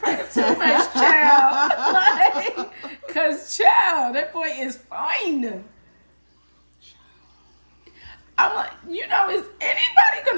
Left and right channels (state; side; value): inverted; both; correlation -1.00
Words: too much, child. Like, cause child, that boy is fine. I'm like, you know, is anybody